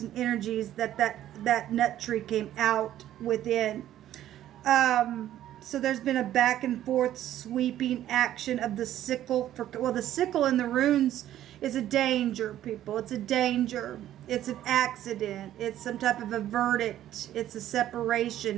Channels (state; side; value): quieter; left; 12.3 dB